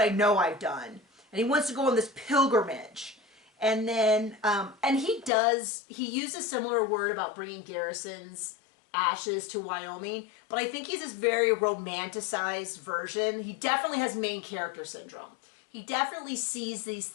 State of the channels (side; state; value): right; drops out; at 5.3 s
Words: know I've done. And he wants to go on this pilgrimage. And then, and he used a similar word about bringing Garrison's ashes to Wyoming, but I think he's this very romanticized version. He definitely has main character syndrome. He definitely sees these